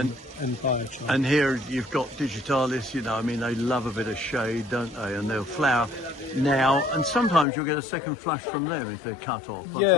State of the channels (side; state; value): right; drops out; at 7.5 s